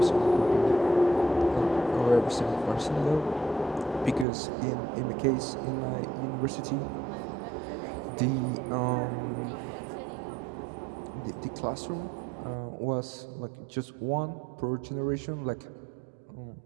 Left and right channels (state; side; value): drops out; left; at 4.2 s